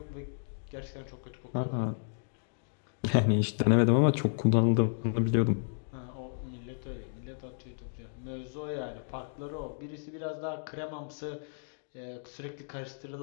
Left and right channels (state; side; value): silent; right; digital silence